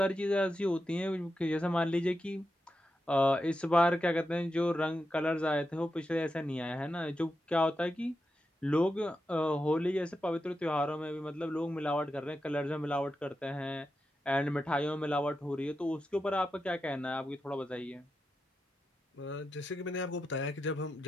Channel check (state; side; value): normal; both; correlation 0.88